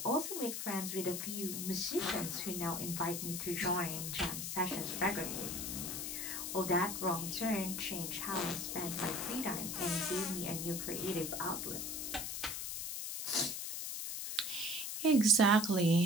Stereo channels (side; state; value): left; noise; hiss, 4 dB below the sound